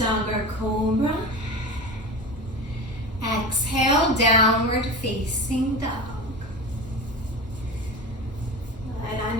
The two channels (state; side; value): normal; both; correlation 0.28